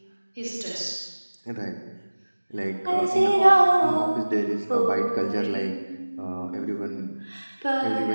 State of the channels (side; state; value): both; inverted; correlation -1.00